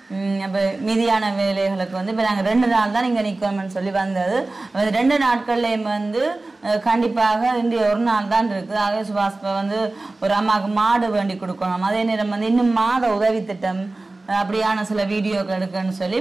அப்போ மீதியான வேலைகளுக்கு வந்து இப்போ நாங்கள் 2 நாள் தான் இங்கே நிற்கணும்னு சொல்லி வந்தது. 2 நாட்கள்லேயும் வந்து கண்டிப்பாக இன்றைய ஒரு நாள் தான் இருக்குது. ஆகவே சுபாஷ் வந்து ஒரு அம்மாவுக்கு மாடு வேண்டி கொடுக்கணும். அதே நேரம் வந்து இன்னும் மாத உதவி திட்டம் அப்படியான சில வீடியோக்கள் எடுக்கன்னு சொல்லி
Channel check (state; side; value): quieter; left; 3.1 dB